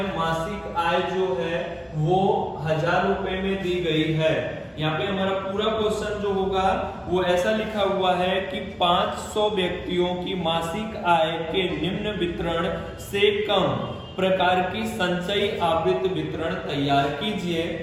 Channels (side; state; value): both; identical; correlation 1.00